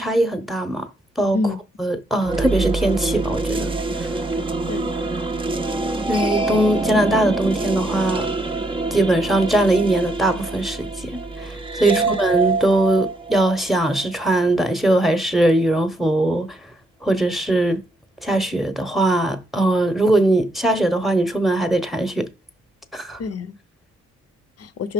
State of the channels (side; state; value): both; normal; correlation 0.76